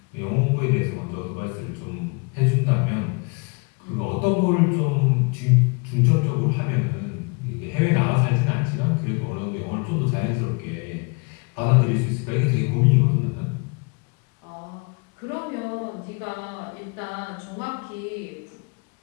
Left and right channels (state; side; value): quieter; right; 32.3 dB